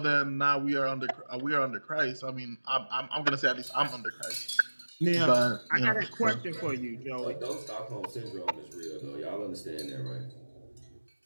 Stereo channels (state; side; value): inverted; both; correlation -1.00